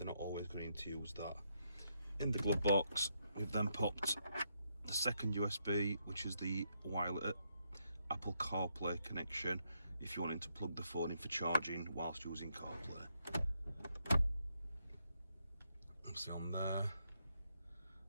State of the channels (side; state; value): both; inverted; correlation -0.78